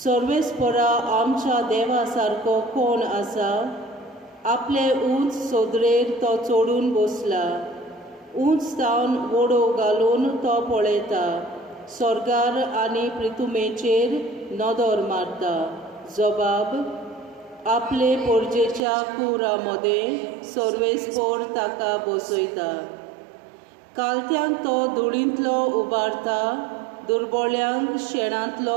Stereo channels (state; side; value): drops out; left; at 18.8 s